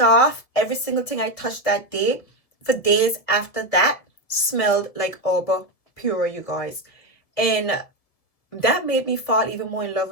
every single thing I touched that day for days after that smelled like Aura Pura, you guys. And that made me fall even more in love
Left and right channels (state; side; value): late; right; 1.6 ms